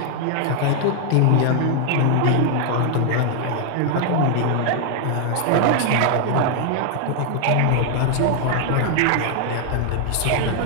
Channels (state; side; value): different; both; correlation 0.00